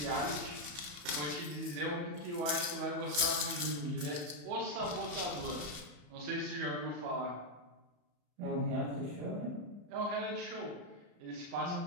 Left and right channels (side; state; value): left; late; 34 ms